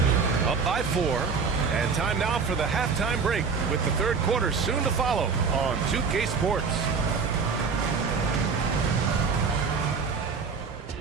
Up by 4. And time now for the halftime break with the third quarter soon to follow on 2K Sports.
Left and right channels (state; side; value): quieter; left; 5.3 dB